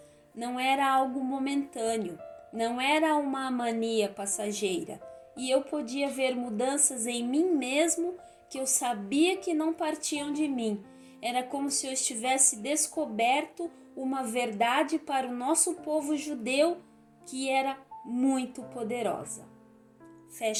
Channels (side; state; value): both; identical; correlation 1.00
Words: não era algo momentâneo, não era uma mania passageira, e eu podia ver mudanças em mim mesmo que eu sabia que não partiam de mim. Era como se eu estivesse descoberto uma verdade para o nosso povo judeu que era muito poderosa.